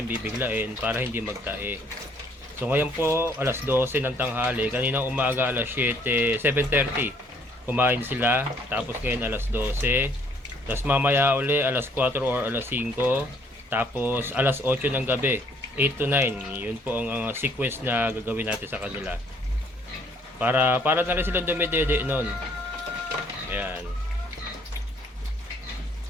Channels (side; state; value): both; normal; correlation 0.63